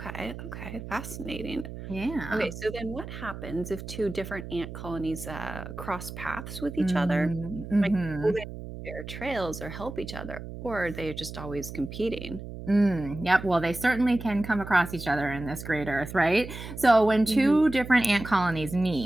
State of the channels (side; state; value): right; noise; hum, 10 dB below the sound